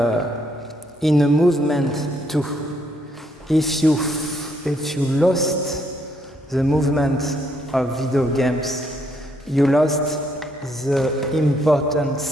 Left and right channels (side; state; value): both; normal; correlation 0.72